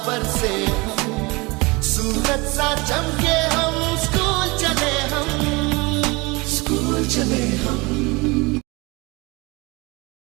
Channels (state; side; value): quieter; left; 25.5 dB